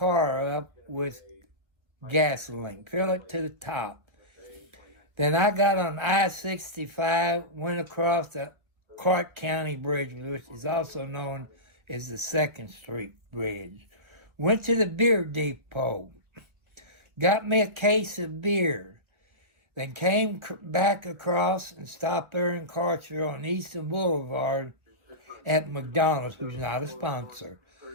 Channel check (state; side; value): late; left; 1.7 ms